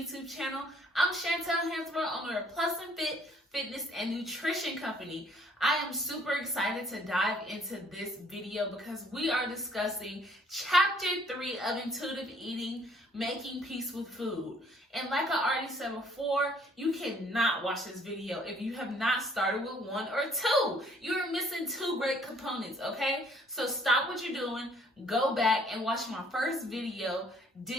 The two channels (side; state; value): both; normal; correlation 0.61